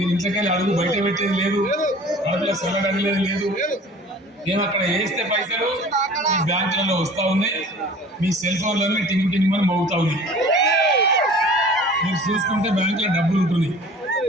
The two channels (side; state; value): both; normal; correlation 0.45